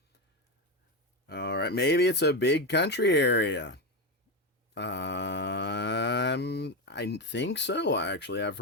All right, maybe it's a big country area. I think so, actually. I've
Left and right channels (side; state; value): both; normal; correlation 0.14